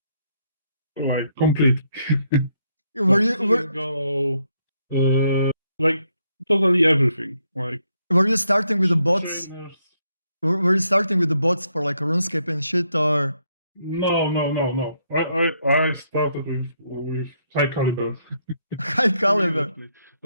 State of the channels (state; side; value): inverted; both; correlation -0.75